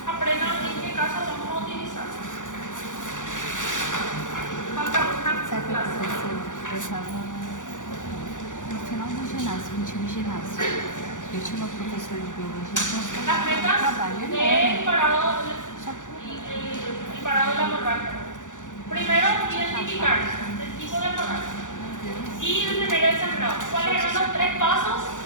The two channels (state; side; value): late; right; 0.87 ms